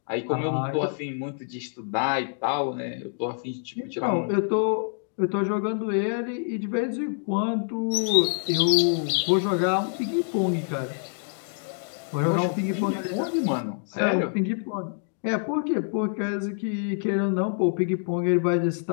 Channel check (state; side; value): silent; right; 61 dB below the other